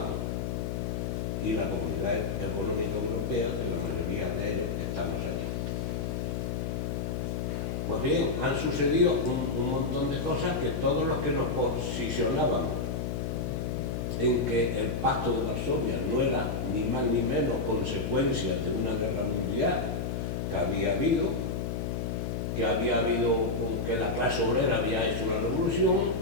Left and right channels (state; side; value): noise; left; hum, 2 dB below the sound